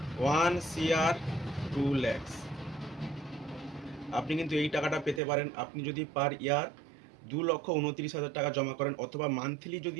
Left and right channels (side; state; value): left; drops out; at 5.2 s